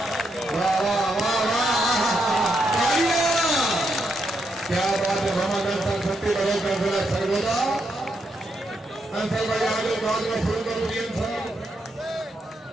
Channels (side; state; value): both; normal; correlation 0.80